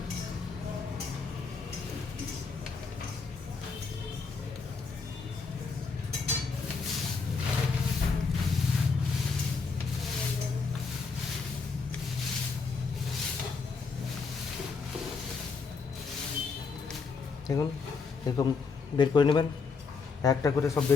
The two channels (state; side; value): quieter; right; 4.8 dB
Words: দেখুন এরকম বের করে নেবেন, একটা করে সব